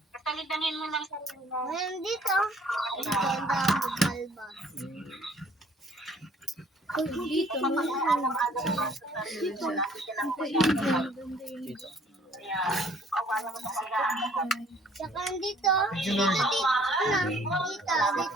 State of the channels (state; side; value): normal; both; correlation 0.58